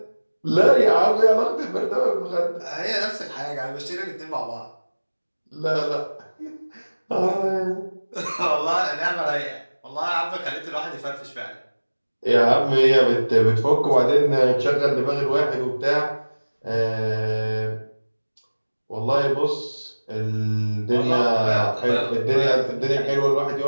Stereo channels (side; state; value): both; inverted; correlation -1.00